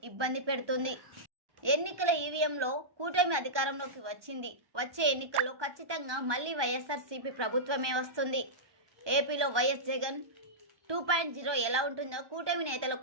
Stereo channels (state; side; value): late; left; 1.2 ms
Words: ఇబ్బంది పెడుతుంది. ఎన్నికల ఈవీఎంలో కూటమి అధికారంలోకి వచ్చింది. వచ్చే ఎన్నికల్లో ఖచ్చితంగా మళ్లీ వైఎస్ఆర్సీపీ ప్రభుత్వమే వస్తుంది. ఏపీలో వైఎస్ జగన్ 2.0 ఎలా ఉంటుందో కూటమి